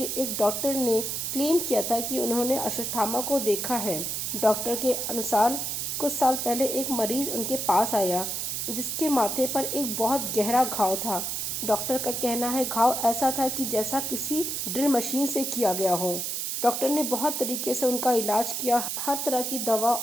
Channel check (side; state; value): right; noise; hiss, 2 dB below the sound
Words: एक डॉक्टर ने क्लेम किया था कि उन्होंने अश्वत्थामा को देखा है। डॉक्टर के अनुसार कुछ साल पहले एक मरीज उनके पास आया जिसके माथे पर एक बहुत गहरा घाव था। डॉक्टर का कहना है घाव ऐसा था कि जैसा किसी ड्रिल मशीन से किया गया हो। डॉक्टर ने बहुत तरीके से उनका इलाज किया, हर तरह की दवा